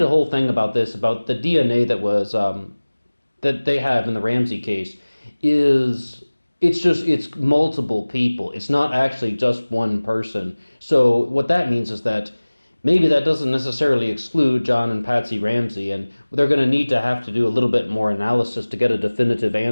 a whole thing about this, about the DNA that was, that they have in the Ramsey case it's multiple people. It's not actually just one person. So what that means is that maybe that doesn't necessarily exclude John and Patsy Ramsey, and they're going to have to do a little bit more analysis to get a definitive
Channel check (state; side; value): inverted; both; correlation -1.00